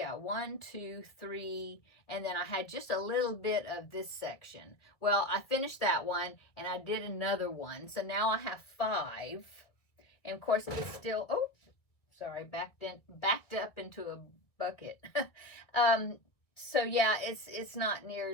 1, 2, 3, and then I had just a little bit of this section. Well, I finished that one and I did another one. So now I have 5. And of course it's still, oh, sorry, backed up into a bucket. So yeah, it's not near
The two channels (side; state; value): right; late; 1.7 ms